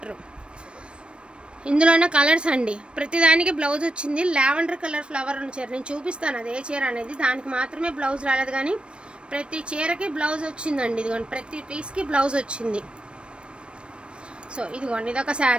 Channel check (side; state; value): left; late; 0.057 ms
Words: ఇందులోనే కలర్స్ అండి, ప్రతిదానికి బ్లౌజ్ వచ్చింది। లావెండర్ కలర్ ఫ్లవర్ ఉన్న చీర నేను చూపిస్తాను, అదే చీర అనేది, దానికి మాత్రమే బ్లౌజ్ రాలేదు, కానీ ప్రతి చీరకి బ్లౌజ్ వచ్చిందండి। ఇదిగోండి, ప్రతి పీస్కి బ్లౌజ్ వచ్చింది। సో ఇదిగోండి, ఇదొక